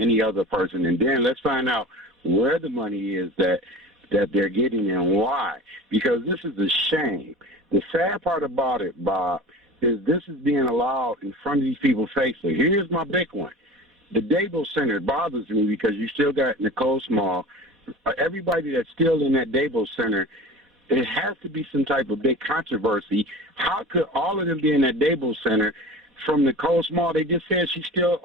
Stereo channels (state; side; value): normal; both; correlation 0.34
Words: other person, and then let's find out where the money is that they're getting and why. Because this is a shame. The sad part about it, Bob, is this is being allowed in front of these people's faces. Here's my big one. The Devos Center bothers me because you still got Nicole Small. Everybody that's still in that Devos Center, it has to be some type of big controversy. How could all of them be in that Devos Center? From Nicole Small, they just said she's still